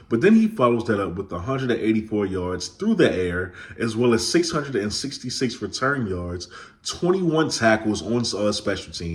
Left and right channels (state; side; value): identical; both; correlation 1.00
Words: But then he follows that up with 184 yards through the air, as well as 666 return yards, 21 tackles on special